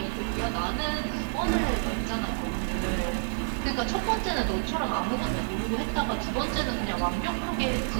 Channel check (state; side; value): silent; left; digital silence